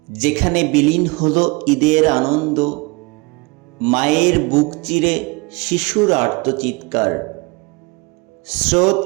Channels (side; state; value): left; quieter; 26.5 dB